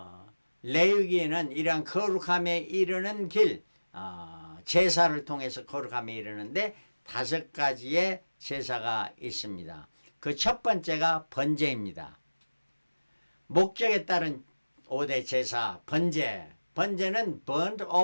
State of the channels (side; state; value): both; inverted; correlation -1.00